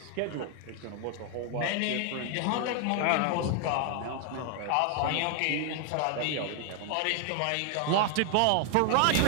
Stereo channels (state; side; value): different; both; correlation 0.00